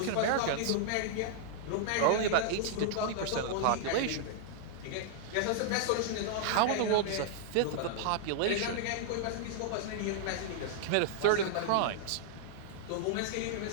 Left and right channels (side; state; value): both; different; correlation -0.01